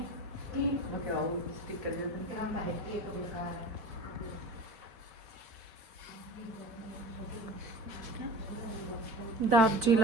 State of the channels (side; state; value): left; late; 4.1 ms